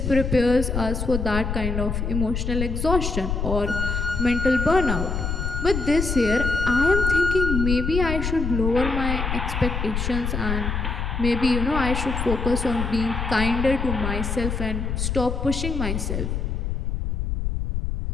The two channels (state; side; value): noise; left; rumble, 2 dB below the sound